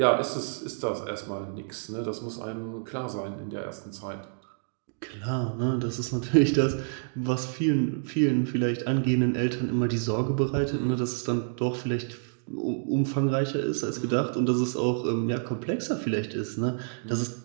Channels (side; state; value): left; silent; digital silence